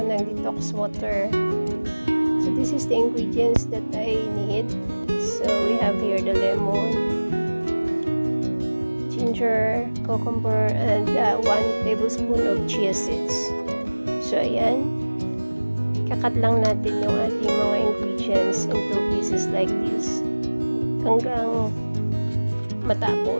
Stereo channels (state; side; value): inverted; both; correlation -1.00